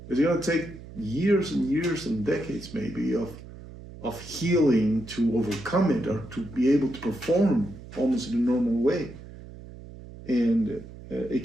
It's going to take years and years and decades maybe of healing to overcome it, or to be able to perform almost in a normal way. And it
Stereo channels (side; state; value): right; noise; hum, 16 dB below the sound